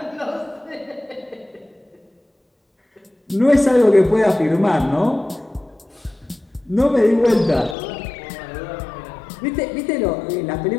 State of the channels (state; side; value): drops out; right; at 7.8 s